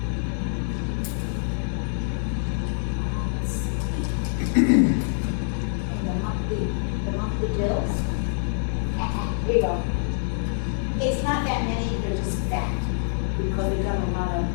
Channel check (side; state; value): right; silent; digital silence